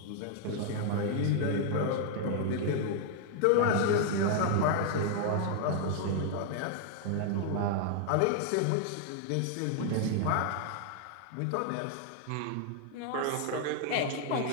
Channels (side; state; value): both; different; correlation 0.00